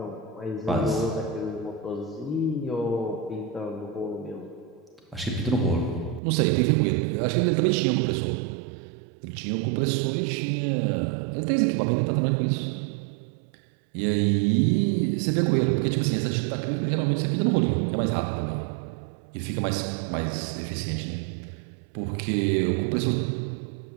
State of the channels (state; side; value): drops out; left; at 6.2 s